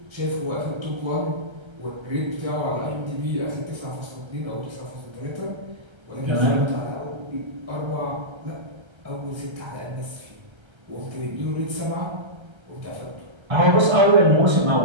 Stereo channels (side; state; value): left; late; 1.3 ms